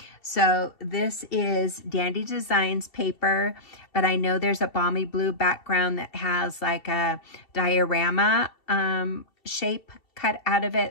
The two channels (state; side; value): late; right; 2.7 ms